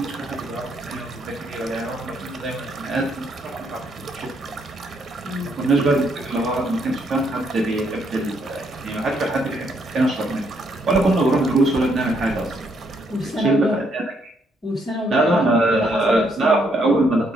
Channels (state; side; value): normal; both; correlation 0.73